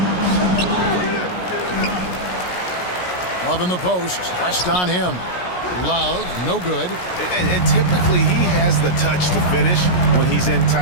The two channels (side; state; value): right; late; 17 ms